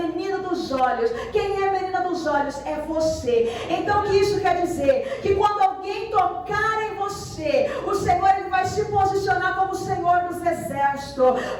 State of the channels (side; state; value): both; identical; correlation 1.00